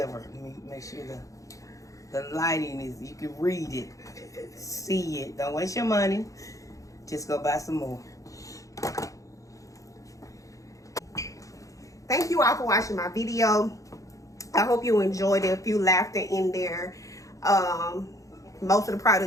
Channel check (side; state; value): right; late; 0.16 ms